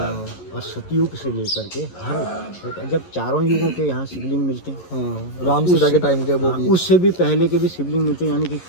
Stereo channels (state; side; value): late; right; 11 ms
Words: और सतयुग से लेकर के हर जब चारों युगों के यहाँ शिवलिंग मिलते हैं। हाँ राम सीता के टाइम के वो भी, उससे भी पहले के भी शिवलिंग मिलते हैं, यानी कि